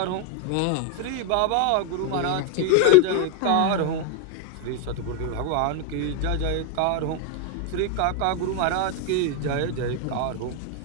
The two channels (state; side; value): different; both; correlation 0.01